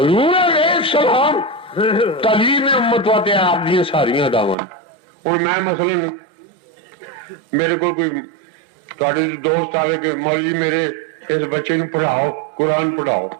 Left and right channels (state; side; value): drops out; left; at 4.5 s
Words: علیہ السلام تعلیم امت واتے آپ دی ساریاں داواں. اور میں مثلا میرے کو کوئی تھوڑے دوست آئے کہ مولوی میرے اس بچے کو پڑھاؤ, قرآن پڑھاؤ,